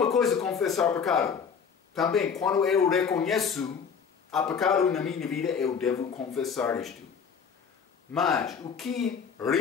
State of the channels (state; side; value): quieter; right; 6.5 dB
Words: coisa confessar pecado. Também, quando eu reconheço há pecado na minha vida, eu devo confessar isto. Mas o que